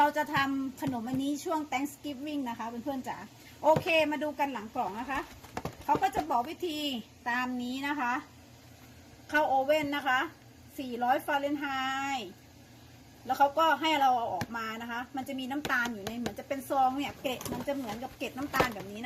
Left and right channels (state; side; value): identical; both; correlation 1.00